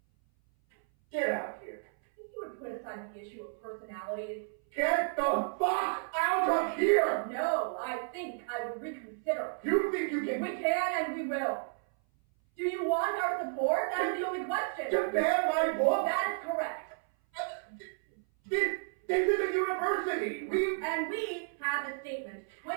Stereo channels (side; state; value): left; silent; 56 dB below the other